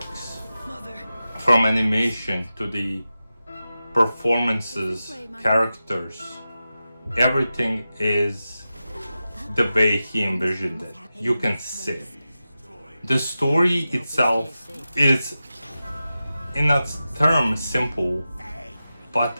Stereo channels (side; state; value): both; inverted; correlation -0.93